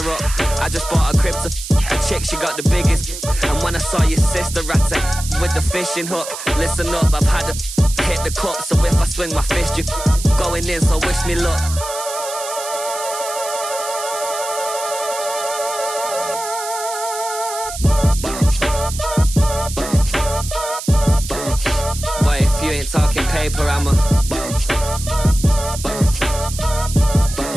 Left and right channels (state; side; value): noise; right; hiss, 9 dB below the sound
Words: up. I just bought a crib to a chick, she got the biggest. And when I saw your sister at it with the fishing hook, listen up, I've had to hit the cup. So if I swing my fist, you going in, so wish me luck. Boy, if you ain't talking paper, I'm a